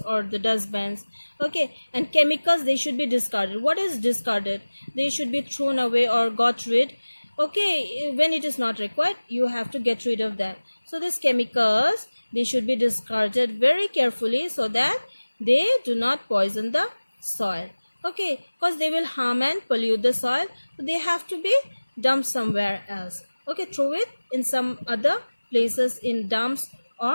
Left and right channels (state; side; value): inverted; both; correlation -1.00